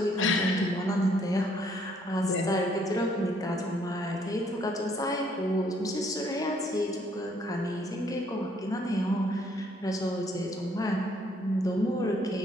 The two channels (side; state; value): both; normal; correlation 0.66